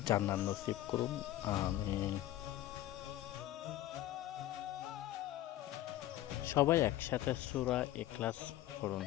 জান্নাত নসিব করুন, আমিন। সবাই একসাথে সূরা ইখলাস পড়ুন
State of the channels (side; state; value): right; quieter; 14.3 dB